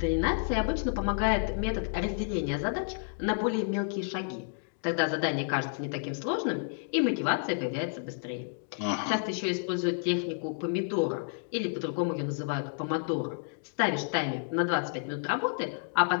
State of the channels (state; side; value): silent; right; digital silence